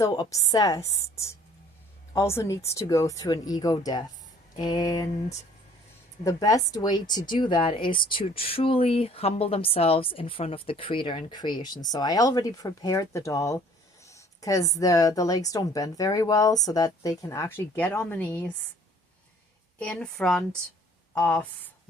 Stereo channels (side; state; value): both; normal; correlation 0.55